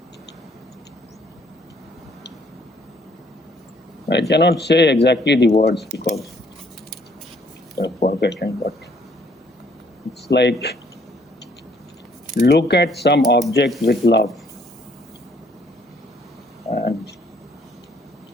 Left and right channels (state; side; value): normal; both; correlation 0.64